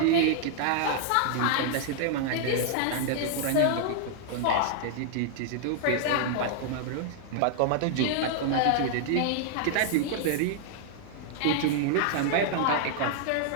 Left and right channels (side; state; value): both; different; correlation 0.00